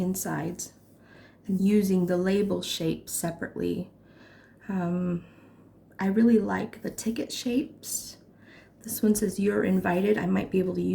insides and using the label shape separately. I really like the ticket shapes. This one says "You're invited." I might be able to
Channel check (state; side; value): identical; both; correlation 1.00